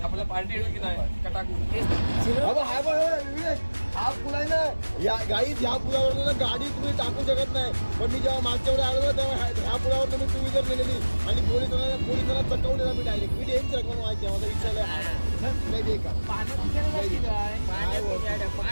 आपल्या पार्टी की नाही कटाकू. हा पूल आहे ना या गाई. ह्या पुलावर ना गाडी तुम्ही टाकू शकत नाही. पण मी जेव्हा मागच्या वेळेस आलो तेव्हा ह्या पुलावर तुम्ही 2 व्हीलर नेलेली आणि पोलिसांना चकवलेला मी डायरेक्ट. मी डेंच रकम माहिती आहे माझा विचारलं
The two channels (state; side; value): inverted; both; correlation -1.00